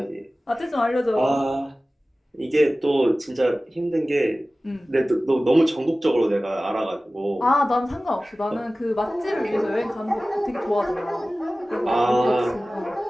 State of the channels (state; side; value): normal; both; correlation 0.97